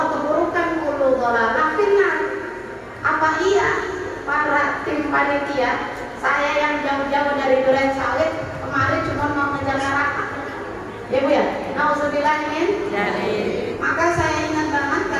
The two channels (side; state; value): both; identical; correlation 1.00